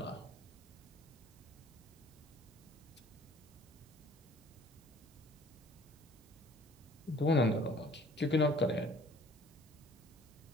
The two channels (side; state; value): right; noise; hiss, 27 dB below the sound